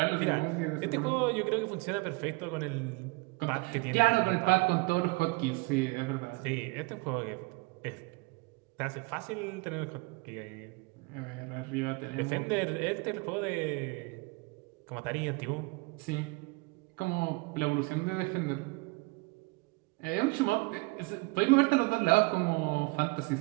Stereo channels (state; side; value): quieter; left; 26.1 dB